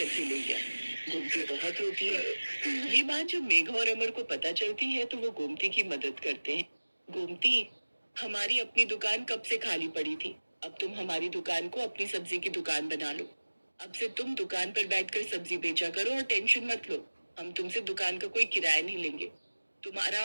ले गया। गोमती बहुत रोती है। ये बात जब मेघा और अमर को पता चलती है तो वो गोमती की मदद करते हैं। गोमती, हमारी अपनी दुकान कब से खाली पड़ी थी। अब तुम हमारी दुकान को अपनी सब्जी की दुकान बना लो। अब से तुम दुकान पर बैठकर सब्जी बेचा करो और टेंशन मत लो। हम तुमसे दुकान का कोई किराया नहीं लेंगे। तुम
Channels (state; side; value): inverted; both; correlation -1.00